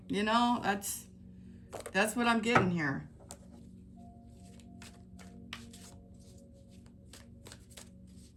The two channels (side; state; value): both; identical; correlation 1.00